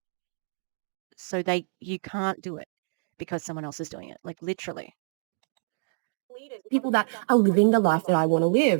So you can't do it because someone else is doing it. Like literally. People that are living the life that I want to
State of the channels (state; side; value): silent; left; digital silence